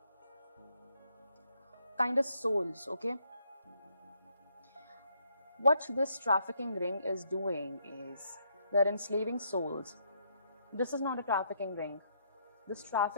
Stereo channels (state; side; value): inverted; both; correlation -0.73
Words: Kind of souls, okay? What this trafficking ring is doing is they're enslaving souls. This is not a trafficking ring. This